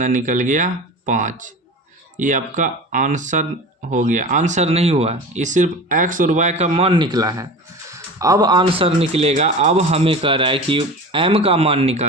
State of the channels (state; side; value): normal; both; correlation 0.33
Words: निकल गया 5। ये आपका आंसर हो गया। आंसर नहीं हुआ, ये सिर्फ x और y का मान निकला है। अब आंसर निकलेगा, अब हमें कह रहा है कि m का मान